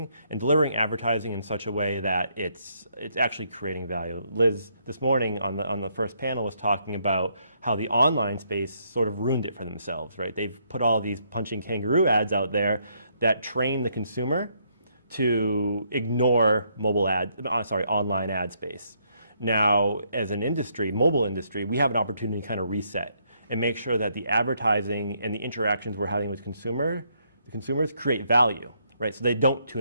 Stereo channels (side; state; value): both; inverted; correlation -0.73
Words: and delivering advertising in such a way that it's actually creating value. Liz, this morning on the first panel, was talking about how the online space sort of ruined it for themselves, right? They've put all these punching kangaroo ads out there that train the consumer to ignore online ad space. Now, as an industry, mobile industry, we have an opportunity to kind of reset and make sure that the advertising and the interactions we're having with consumers create value, right? So they don't